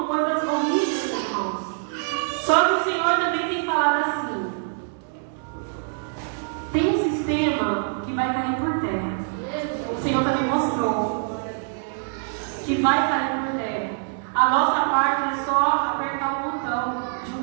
coisas horríveis, irmãos. Só que o Senhor também tem falado assim: tem um sistema que vai cair por terra. O Senhor também mostrou que vai cair por terra. A nossa parte é só apertar o botão de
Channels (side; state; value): left; silent; 62 dB below the other